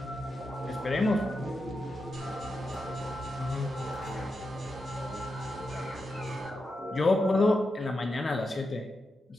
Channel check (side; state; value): both; normal; correlation 0.88